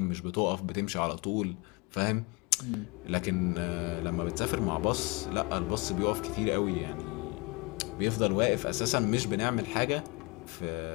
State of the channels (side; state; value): right; quieter; 27.8 dB